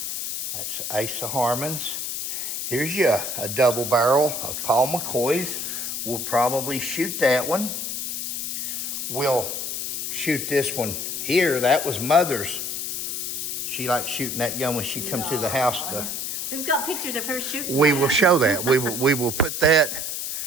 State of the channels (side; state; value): left; noise; hiss, 3 dB below the sound